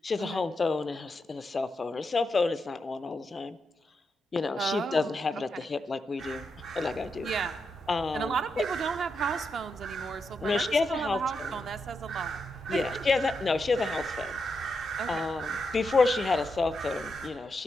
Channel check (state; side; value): normal; both; correlation 0.84